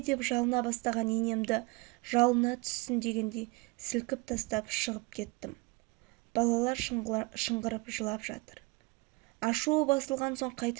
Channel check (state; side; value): quieter; left; 25.6 dB